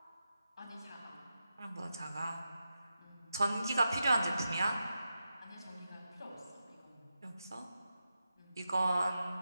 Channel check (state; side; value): inverted; both; correlation -0.89